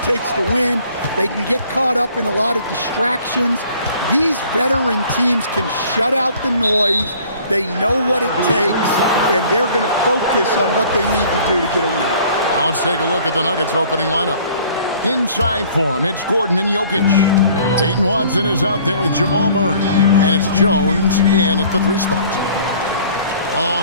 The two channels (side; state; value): both; inverted; correlation -0.53